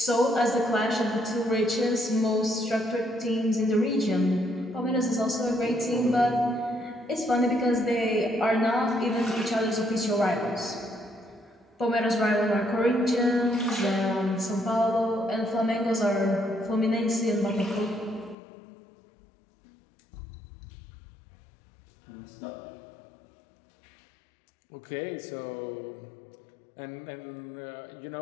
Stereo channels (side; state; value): right; drops out; at 18.4 s